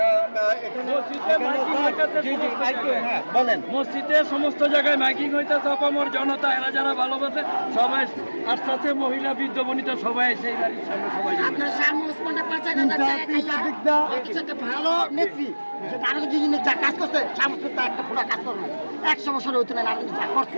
বলেন, মসজিদে সমস্ত জায়গায় মাইকিং হইতেছে, অপামর জনতা এরা যারা ভালোবাসে সবাই আস্তে আস্তে, মহিলা বৃদ্ধ বনিতা সবাই সেই বাড়ির সামনে সবাই। আপনার ভালো নেত্রী যা কাজ করছে, একটা পুরো কাজ করবে 100 বছর হইতে না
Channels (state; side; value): inverted; both; correlation -1.00